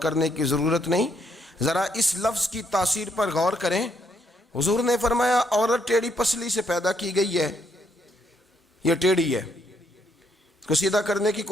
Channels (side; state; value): both; normal; correlation 0.73